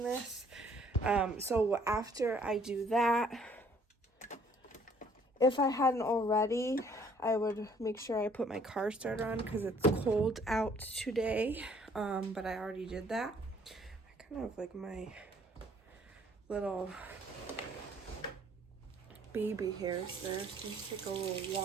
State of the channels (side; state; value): both; normal; correlation 0.60